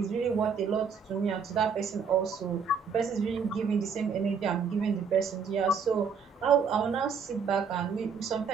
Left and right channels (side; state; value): left; quieter; 5.8 dB